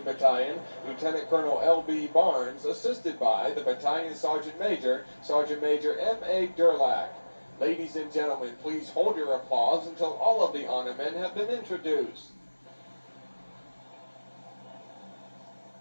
Battalion, Lieutenant Colonel L.B. Barnes, assisted by the Battalion Sergeant Major, Sergeant Major M.A. Durlack. Ladies and gentlemen, please hold your applause until all of the honormen have been introduced.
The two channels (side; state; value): both; inverted; correlation -1.00